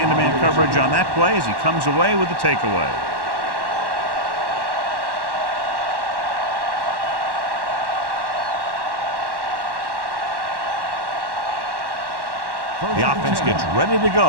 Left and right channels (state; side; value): late; left; 1.1 ms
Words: coverage on that play as he comes away with the takeaway. The offense gets ready to